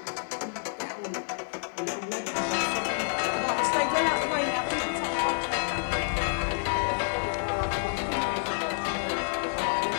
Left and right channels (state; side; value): silent; right; digital silence